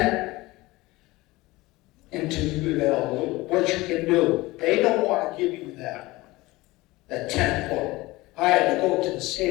into what you can do. They don't want to give you that tenant book. I had to go to the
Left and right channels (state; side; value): quieter; right; 20.3 dB